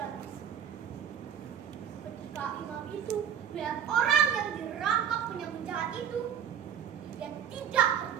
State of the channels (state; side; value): quieter; left; 8.8 dB